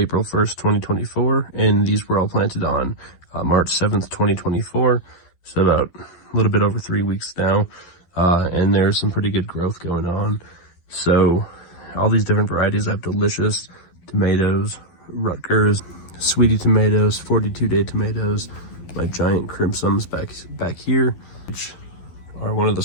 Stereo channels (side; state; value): right; late; 12 ms